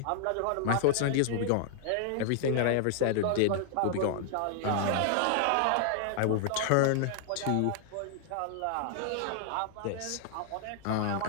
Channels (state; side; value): different; both; correlation -0.01